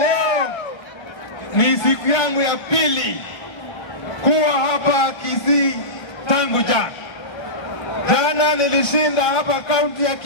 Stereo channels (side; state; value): right; late; 1.3 ms